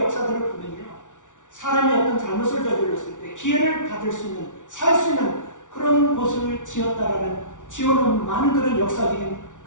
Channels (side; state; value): right; late; 0.87 ms